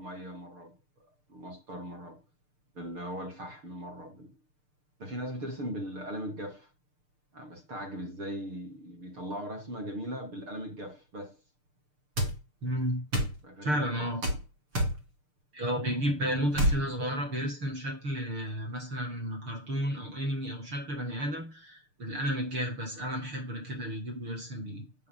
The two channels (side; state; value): left; late; 6.7 ms